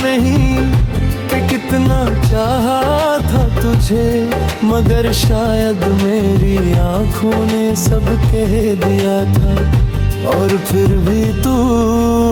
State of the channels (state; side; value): identical; both; correlation 1.00